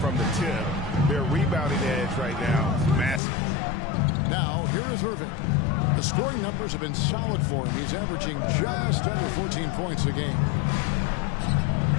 the tip. Their rebounding edge right now is massive. Now, here is Irving. The scoring numbers have been solid for him. He's averaging just under 14 points a game.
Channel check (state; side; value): drops out; right; at 3.2 s